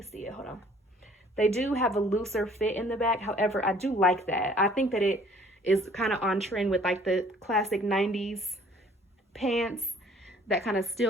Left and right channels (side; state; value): both; normal; correlation 0.56